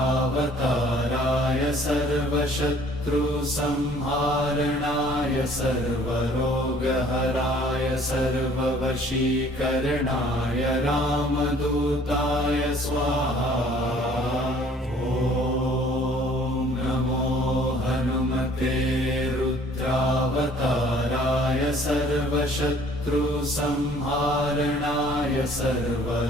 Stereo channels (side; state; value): both; normal; correlation 0.55